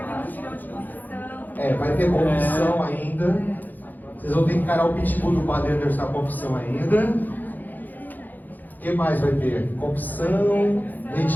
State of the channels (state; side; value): late; right; 0.085 ms